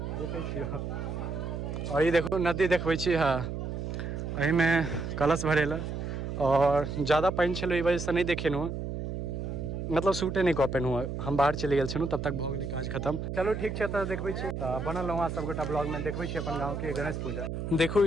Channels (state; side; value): noise; right; hum, 5 dB below the sound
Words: देखै छियै। और ये देखो नदी देखबै छी, हाँ एहि में कलश भरेला और ज़्यादा पानि छलै, ई वजह से नहीं देखेलहुँ, मतलब शूटे नहीं कऽ पेलहुँ। हम बाहर चलि गेल छलहुँ, तब तक भऽ गेलै काज खत्म। चलो ठीक छै, तऽ देखबै छी। तऽ बनल रहूँ सब गोटा ब्लॉग में, देखबै छी अपन गाँव के गणेश पूजा। देखू